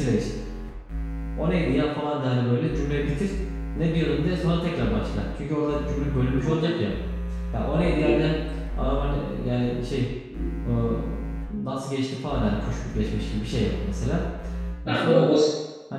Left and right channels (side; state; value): both; identical; correlation 1.00